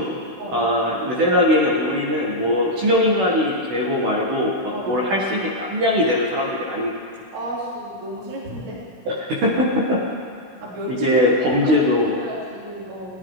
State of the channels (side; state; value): left; late; 16 ms